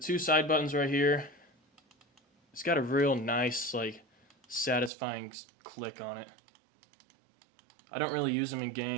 side buttons right here, it's got a real nice, like, satisfying click on it. I don't really use them in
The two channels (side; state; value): left; drops out; at 4.9 s